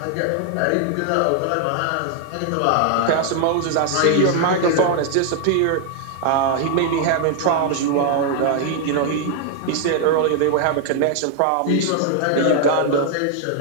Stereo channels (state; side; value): different; both; correlation 0.00